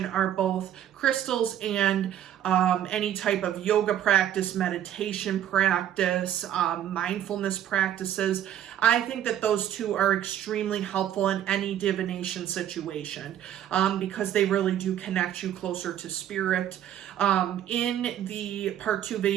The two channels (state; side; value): quieter; left; 10.9 dB